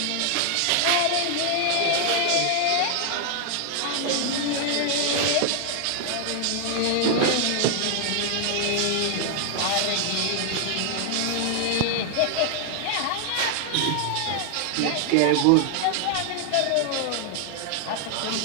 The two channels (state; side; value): different; both; correlation 0.00